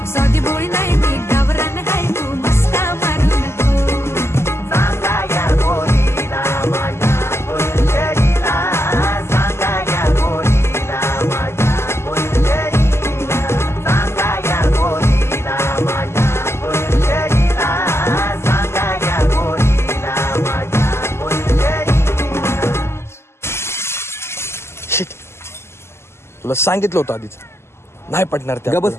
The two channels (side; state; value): right; late; 0.12 ms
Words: साधी भोळी नाही मी गावरान हाय तू मस्का मारू नको सांगा या पोरीला माझ्या फुलझडीला सांगा या पोरीला माझ्या फुलझडीला सांगा या पोरीला माझ्या फुलझडीला सांगा या पोरीला माझ्या फुलझडीला शिट तुला सांगितलं होतं आधीच नाही पटणार त्या बस